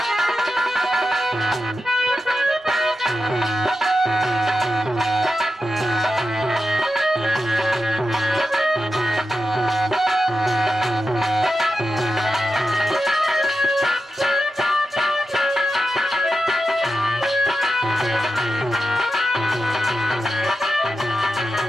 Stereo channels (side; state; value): both; normal; correlation 0.90